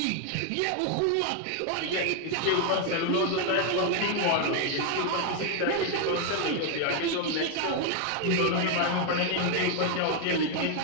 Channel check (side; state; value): both; different; correlation 0.01